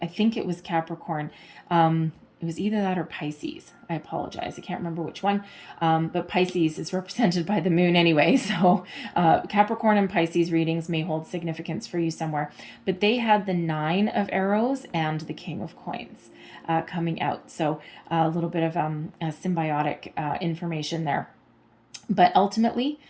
I think it was Capricorn. It was either that or Pisces. I apologize. I can't remember which one. But Pisces is represented by the moon anyway. So Capricorn and Pisces readings may hold significance for you somewhere. But they had the Nine of Arrows and the King of Coins coming out. So a little bit of symbiotic information there. But ultimately,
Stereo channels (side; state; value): both; identical; correlation 1.00